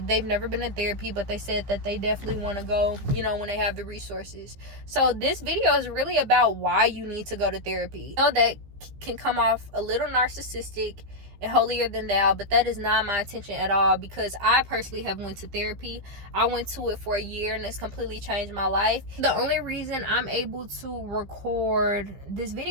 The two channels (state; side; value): late; left; 15 ms